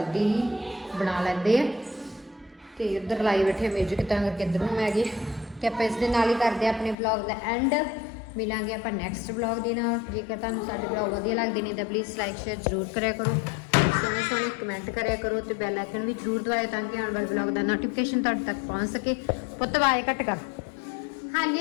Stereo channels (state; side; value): drops out; right; at 7.0 s